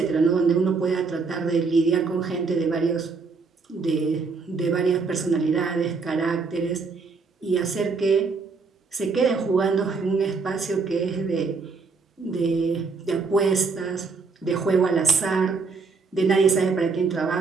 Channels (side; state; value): left; quieter; 4.5 dB